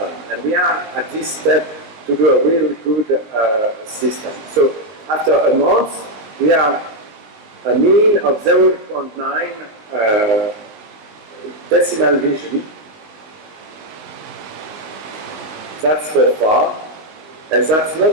And we are at this step to do a really good system. So after a month, we have a mean of 0.9 decimal vision. That's for far, and that's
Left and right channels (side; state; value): left; late; 19 ms